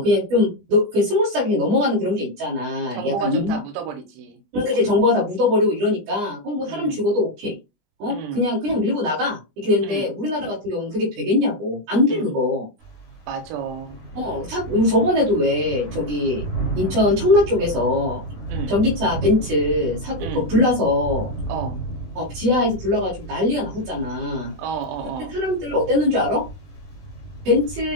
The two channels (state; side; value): late; left; 20 ms